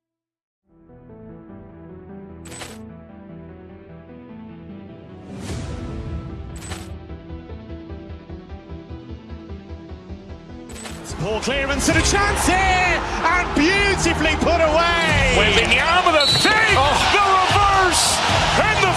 Poor clearance and a chance here, and beautifully put away. Wembanyama with a save, the reverse, and the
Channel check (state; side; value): identical; both; correlation 1.00